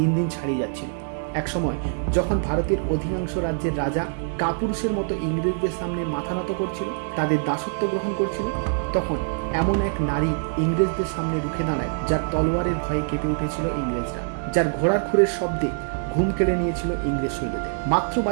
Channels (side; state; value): left; silent; 61 dB below the other